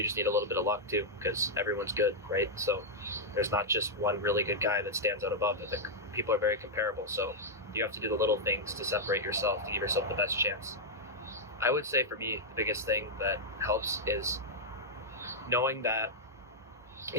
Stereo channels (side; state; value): both; normal; correlation -0.05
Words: just need a little bit of luck too, because everyone's good, right? So there's not just one really good guy that stands out above it. People are very comparable, so you have to do the little things to separate yourself, to give yourself the best chance. I would say for me, the biggest thing that helps is knowing that